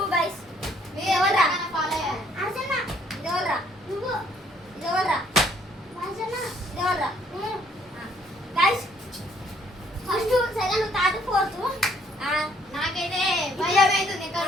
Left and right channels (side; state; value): both; normal; correlation 0.64